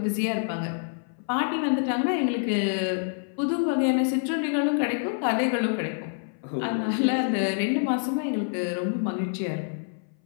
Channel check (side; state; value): right; silent; 58 dB below the other